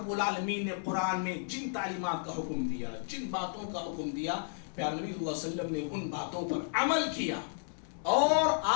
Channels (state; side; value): silent; right; digital silence